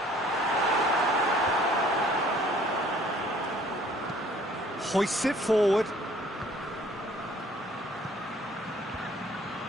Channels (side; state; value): both; normal; correlation 0.56